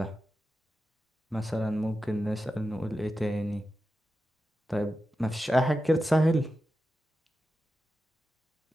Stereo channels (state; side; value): normal; both; correlation 0.91